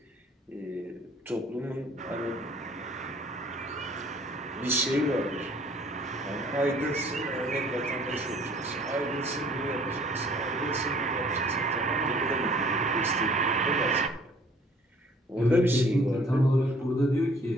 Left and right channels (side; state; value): both; normal; correlation 0.56